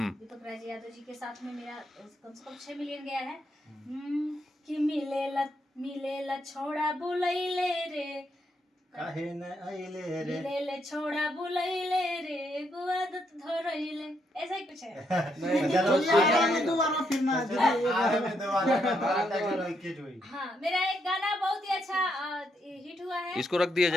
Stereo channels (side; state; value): both; normal; correlation 0.77